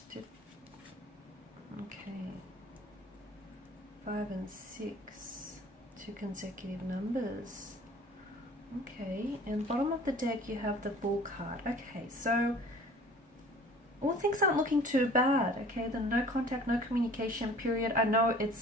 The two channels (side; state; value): both; normal; correlation 0.48